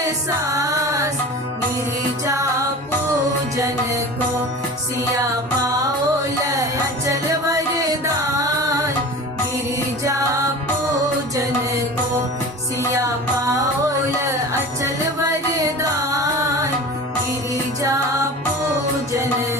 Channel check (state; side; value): normal; both; correlation 0.36